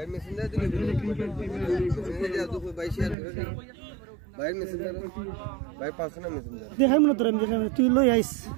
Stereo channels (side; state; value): left; drops out; at 3.2 s